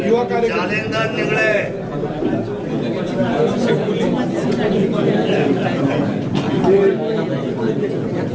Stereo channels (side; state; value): both; identical; correlation 1.00